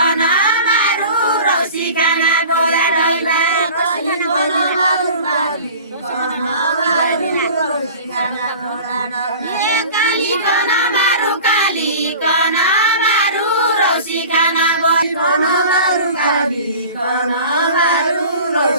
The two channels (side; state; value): both; inverted; correlation -0.40